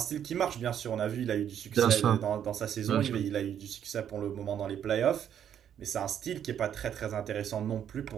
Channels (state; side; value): quieter; left; 9.4 dB